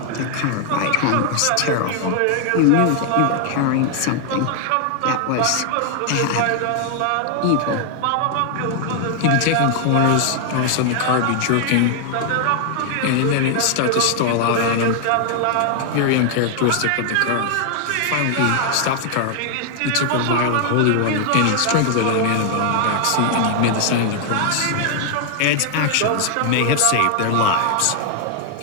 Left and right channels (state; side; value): different; both; correlation 0.00